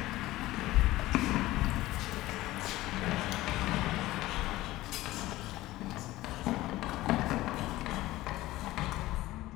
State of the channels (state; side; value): quieter; right; 17.2 dB